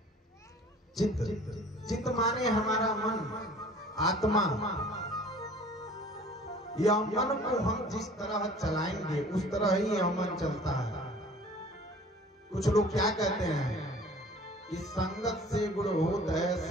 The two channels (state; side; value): normal; both; correlation 0.48